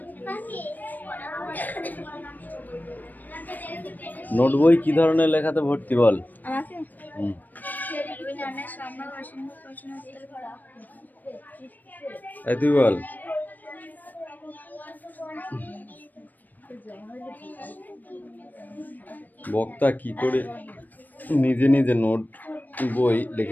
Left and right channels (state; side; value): late; right; 0.086 ms